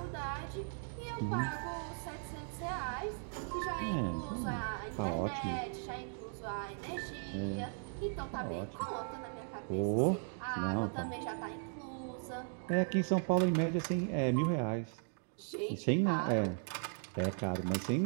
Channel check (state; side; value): silent; left; 53 dB below the other